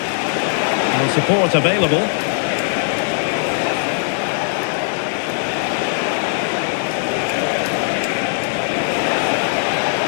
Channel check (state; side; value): silent; right; digital silence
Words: And support available.